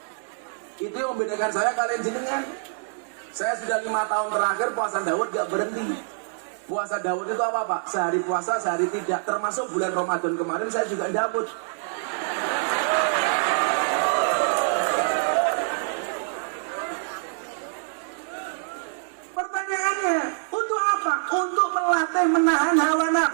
Itu yang membedakan saya kalian jenengan. Saya sudah 5 tahun terakhir puasa Daud gak berhenti. Puasa Daud itu apa Pak? Sehari puasa, sehari tidak. Termasuk bulan Ramadan kemarin saya juga Daud. Pertanyaannya, untuk apa? Untuk melatih menahan hawa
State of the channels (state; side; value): silent; left; 61 dB below the other